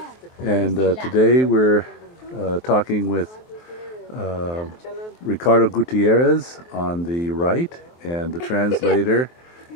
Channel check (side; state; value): right; late; 23 ms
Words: And today we're talking with Ricardo Gutierrez on the right, and the translator